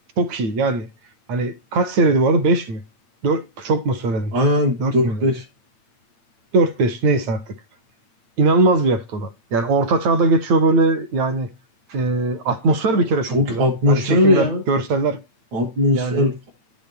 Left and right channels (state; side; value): late; left; 8.8 ms